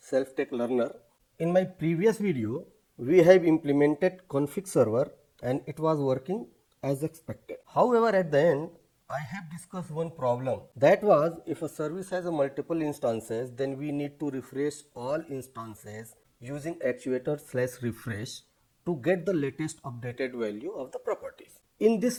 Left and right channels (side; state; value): both; identical; correlation 1.00